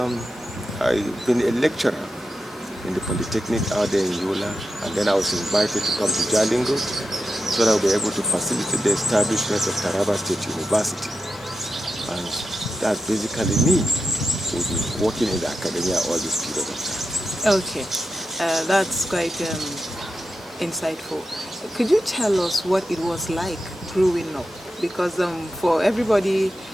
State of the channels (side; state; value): both; normal; correlation 0.88